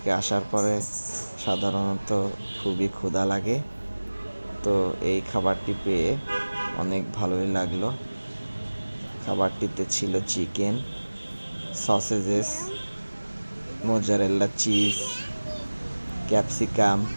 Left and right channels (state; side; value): inverted; both; correlation -1.00